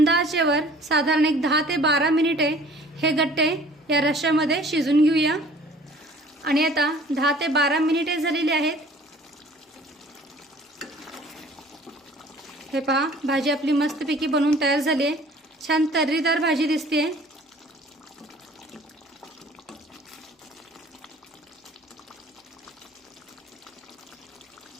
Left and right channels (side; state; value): both; normal; correlation 0.51